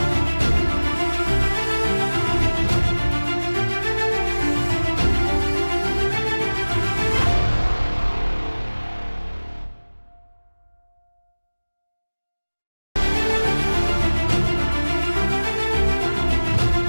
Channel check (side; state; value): both; inverted; correlation -1.00